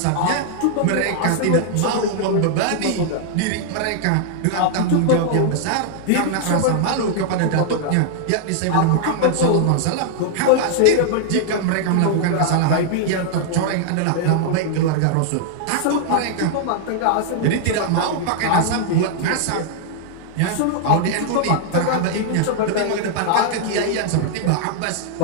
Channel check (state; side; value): different; both; correlation -0.01